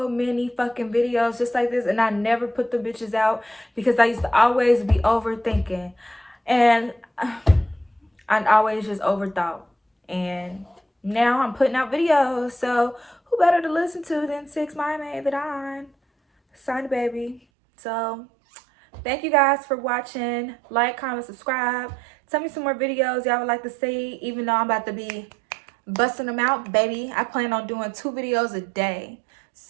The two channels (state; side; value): drops out; left; at 17.4 s